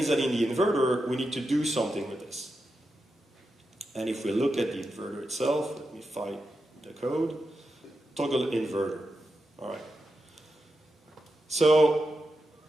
that in the inverter, we need to do something with this. And if we look at the inverter itself, let me find the code. Toggle inverter. All right. So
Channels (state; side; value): normal; both; correlation 0.88